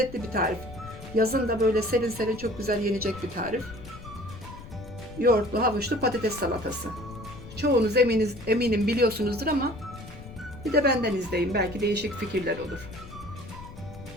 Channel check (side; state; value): left; noise; rumble, 15 dB below the sound